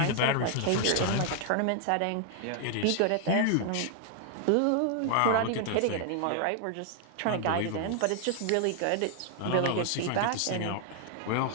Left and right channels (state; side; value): different; both; correlation 0.00